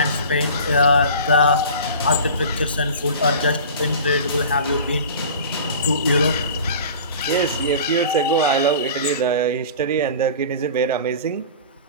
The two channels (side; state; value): both; inverted; correlation -0.38